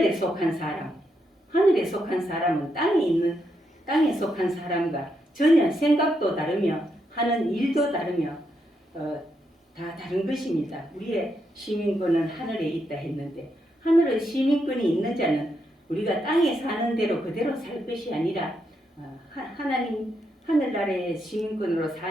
속한 사람, 하늘에 속한 사람은 땅에 속한 사람과 전혀 생각도 다르며 하는 일도 다르며 다 다른 것입니다. 우리의 시민권은 하늘에 있다 했는데 하늘에 시민권이 있는 자는 우리가 땅에 사는 대로 그대로 살 것이 아니라 하나님 하늘나라의 시민권으로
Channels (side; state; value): both; normal; correlation 0.81